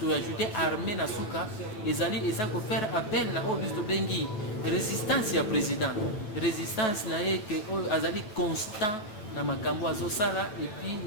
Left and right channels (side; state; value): right; late; 9.3 ms